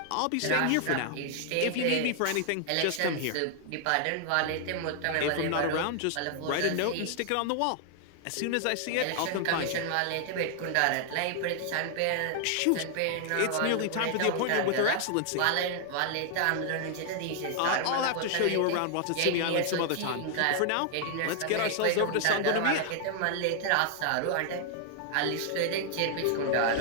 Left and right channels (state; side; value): different; both; correlation 0.00